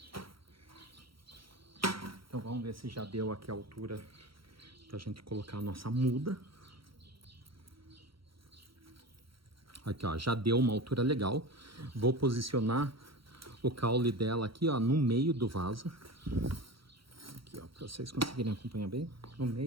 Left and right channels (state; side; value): late; left; 0.74 ms